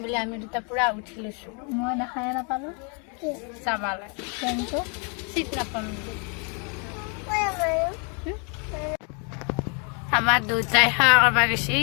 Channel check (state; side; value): quieter; right; 36.7 dB